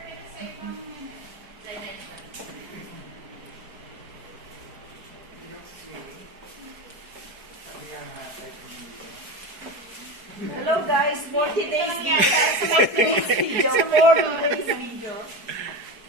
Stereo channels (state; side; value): late; left; 4.7 ms